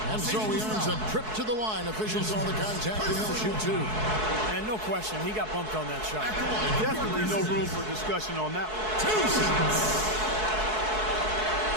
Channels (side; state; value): left; late; 4.6 ms